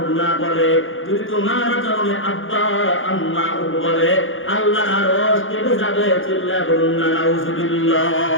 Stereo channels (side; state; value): right; late; 0.58 ms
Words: না বলে। যদি তোমার আচরণে আব্বা আম্মা বলে আল্লাহ আরশ কেঁপে যাবে। চিল্লায়া বলুন না নাউজুবিল্লাহ।